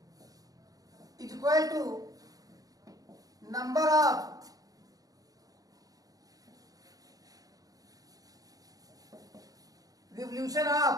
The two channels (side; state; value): left; late; 0.18 ms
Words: is equal to number of revolution